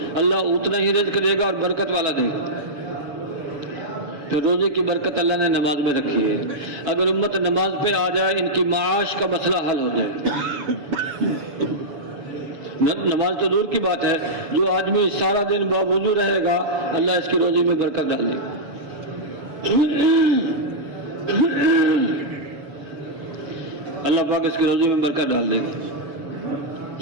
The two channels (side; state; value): left; late; 7.0 ms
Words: اللہ اتنا ہی رزق دے گا اور برکت والا دے گا۔ پھر روزے کی برکت اللہ نے نماز میں رکھی ہے، اگر امت نماز پہ آ جائے ان کی معاش کا مسئلہ حل ہو جائے۔ نماز تو دور کی بات ہے، جو آدمی سارا دن باوضو رہے گا اللہ اس کی روزی میں برکت ڈال دے گا۔ اللہ پاک اس کی روزی میں برکت ڈال دے گا،